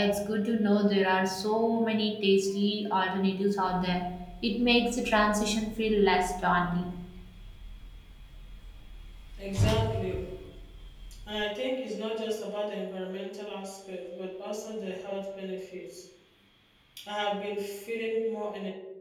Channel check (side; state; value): both; identical; correlation 1.00